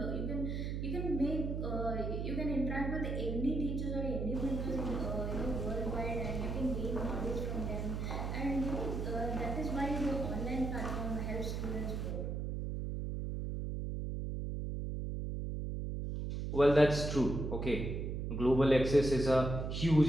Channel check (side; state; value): right; noise; hum, 3 dB below the sound